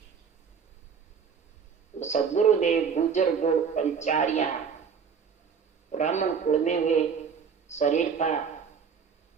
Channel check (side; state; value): left; quieter; 6.4 dB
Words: तो सदगुरुदेव गुजर गोड़ पंचारिया ब्राह्मण कुल में हुए, शरीर था,